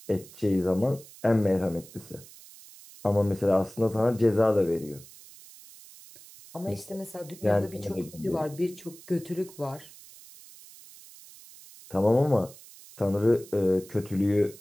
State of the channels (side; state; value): right; noise; hiss, 20 dB below the sound